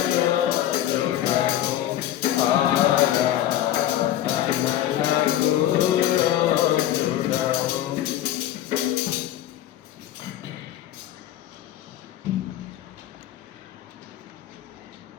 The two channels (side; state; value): right; quieter; 12.5 dB